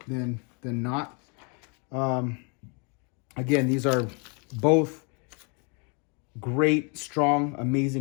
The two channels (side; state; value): right; quieter; 35.5 dB